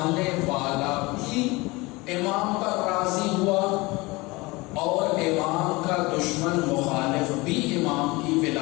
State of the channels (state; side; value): quieter; right; 23.2 dB